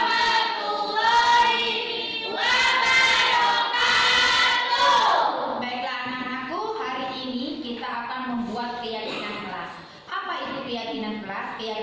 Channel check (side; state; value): both; identical; correlation 1.00